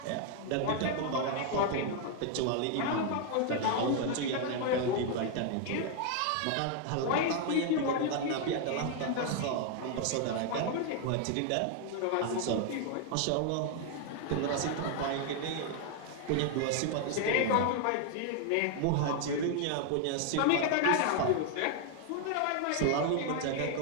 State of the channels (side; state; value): both; different; correlation 0.00